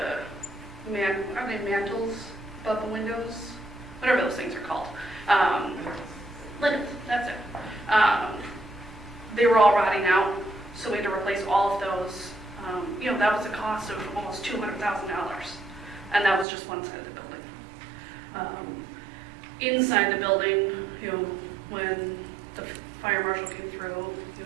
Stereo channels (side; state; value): left; drops out; at 16.4 s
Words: they mantles above the windows? Whatever those things are called. Linens, that's it. They were all rotting out, so we had to replace all of those. That was a cost of almost $200,000, and that was just one side of the building. Inside the building, when the fire marshal came through,